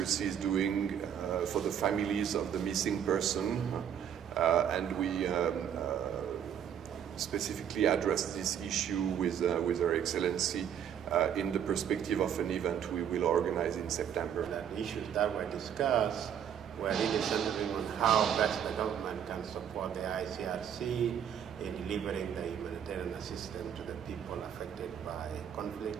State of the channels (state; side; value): quieter; left; 8.9 dB